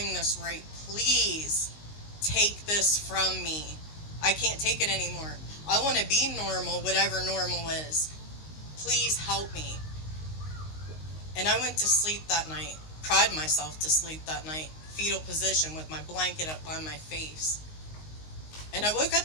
this right. Please take this from me. I can't take it anymore. I want to be normal, whatever normal is. Please help me. And I went to sleep that night, cried myself to sleep that night, fetal position with my blanket up by my face. And I woke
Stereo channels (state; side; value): late; right; 19 ms